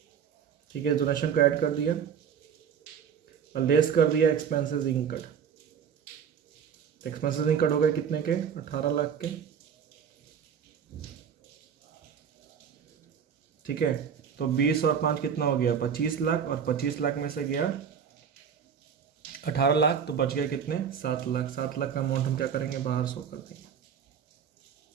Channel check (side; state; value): left; quieter; 7.5 dB